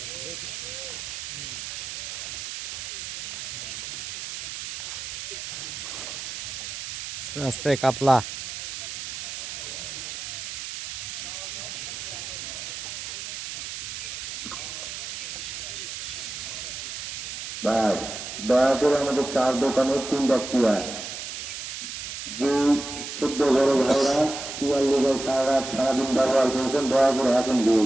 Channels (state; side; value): noise; right; hiss, 7 dB below the sound